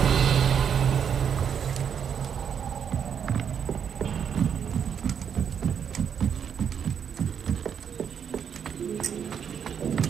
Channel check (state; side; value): quieter; left; 7.8 dB